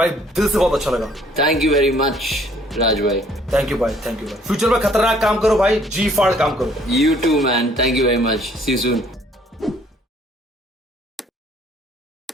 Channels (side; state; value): both; normal; correlation 0.61